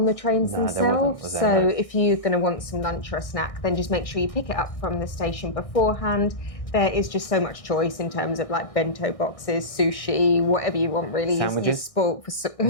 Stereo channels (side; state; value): right; late; 1.6 ms